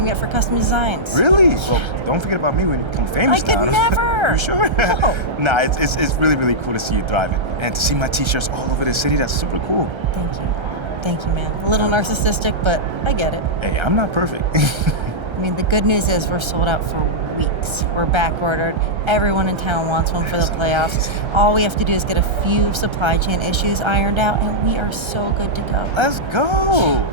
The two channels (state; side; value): late; left; 1.3 ms